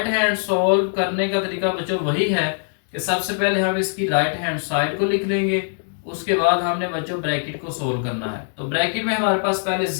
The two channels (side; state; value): right; silent; digital silence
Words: हैंड सॉल्व करने का तरीका बच्चों वही है कि सबसे पहले हम इसकी राइट हैंड साइड को लिख लेंगे, उसके बाद हमने बच्चों ब्रैकेट को सोल्व करना है। तो ब्रैकेट में हमारे पास पहले